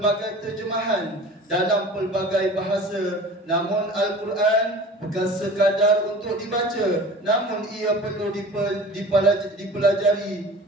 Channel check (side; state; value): both; normal; correlation 0.41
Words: terjemahan dalam pelbagai bahasa. Namun Al-Quran bukan sekadar untuk dibaca, namun ia perlu dipelajari